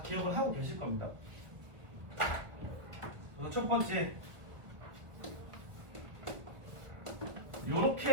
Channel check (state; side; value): late; left; 1.5 ms